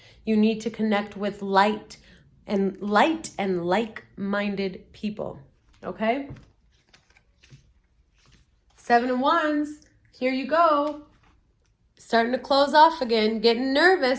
You need to connect with light and like-minded people. Okay? 7 of Wands. Here you go. Starting to close off again, getting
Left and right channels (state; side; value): identical; both; correlation 1.00